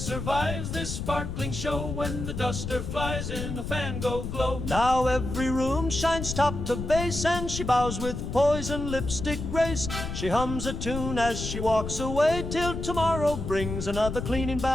this sparkling show when the duster flies in a fango glow. Now every room shines top to base, and she bows with poise and lipstick grace. She hums a tune as she walks away till tomorrow brings another cleaning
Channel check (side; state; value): left; noise; rumble, 5 dB below the sound